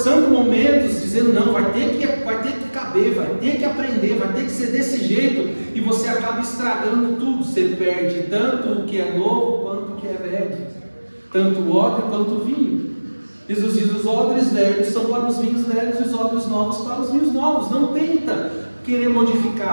momentos, dizendo: não, vai ter que caber, vai ter que aprender, vai ter que ser desse jeito, e você acaba estragando tudo. Você perde tanto o que é novo quanto o que é velho, tanto o odre quanto o vinho. Jesus diz: os odres velhos são para os vinhos velhos, e os odres novos para os vinhos novos. Não tenta querer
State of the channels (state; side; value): inverted; both; correlation -1.00